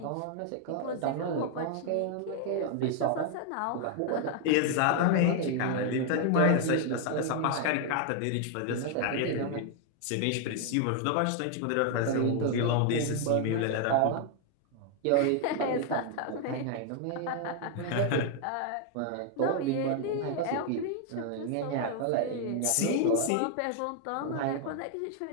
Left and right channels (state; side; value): different; both; correlation 0.00